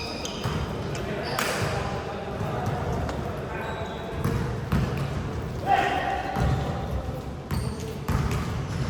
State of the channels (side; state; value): both; identical; correlation 1.00